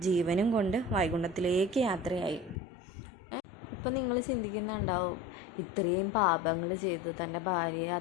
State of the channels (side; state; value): right; drops out; at 2.6 s